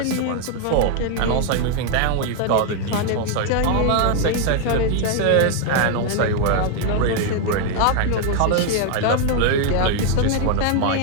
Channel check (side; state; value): both; different; correlation 0.00